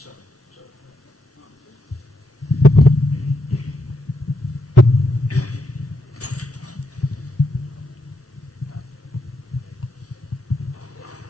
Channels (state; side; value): normal; both; correlation 0.81